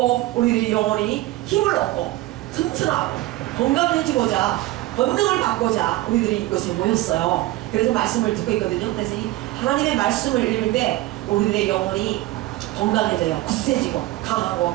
우리들이 영혼이 힘을 얻고 튼튼하고 건강해지고자 권능을 받고자 우리들이 이곳에 모였어요. 그래서 말씀을 듣고 있거든요. 그래서 이 하나님의 말씀을 읽을 때 우리들의 영혼이 건강해져요. 굳세지고 강하고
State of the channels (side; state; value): left; quieter; 17.4 dB